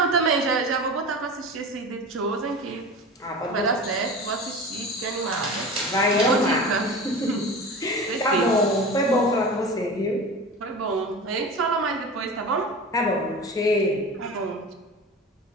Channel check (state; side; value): normal; both; correlation 0.32